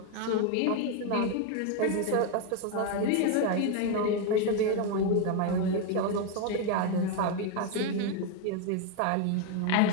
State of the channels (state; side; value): different; both; correlation 0.01